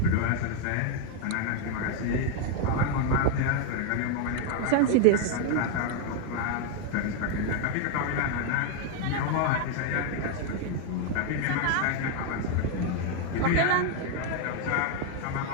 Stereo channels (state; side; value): different; both; correlation 0.01